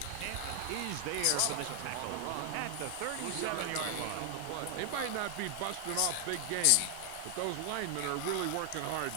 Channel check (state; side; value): different; both; correlation 0.00